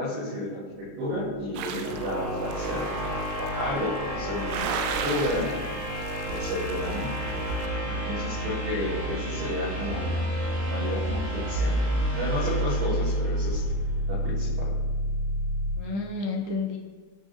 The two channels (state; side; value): late; left; 36 ms